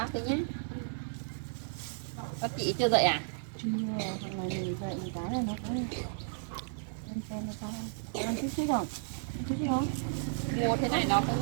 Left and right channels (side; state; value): left; silent; 55 dB below the other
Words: tí nhé. Các chị chưa dậy à? chưa thằng này mình dậy một cái là nó cũng lên xe nó có ăn chút xíu rồi chút xíu không Mua thế này nó